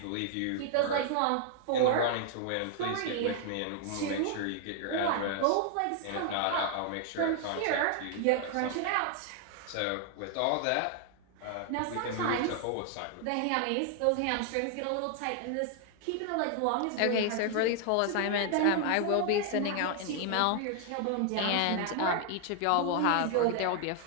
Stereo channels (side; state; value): both; different; correlation 0.00